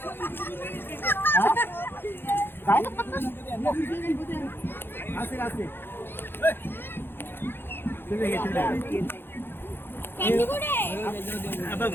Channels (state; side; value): late; right; 0.10 ms